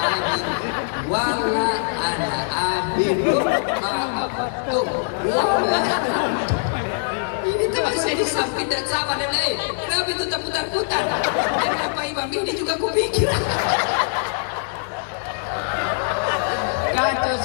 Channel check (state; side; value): silent; right; 64 dB below the other